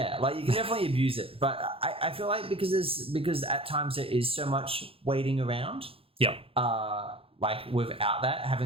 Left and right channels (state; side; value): late; left; 0.27 ms